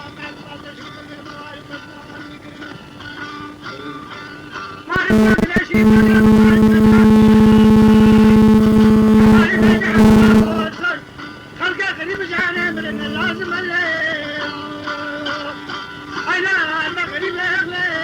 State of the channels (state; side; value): identical; both; correlation 1.00